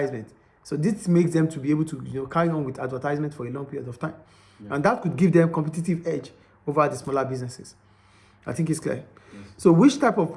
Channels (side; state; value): both; identical; correlation 1.00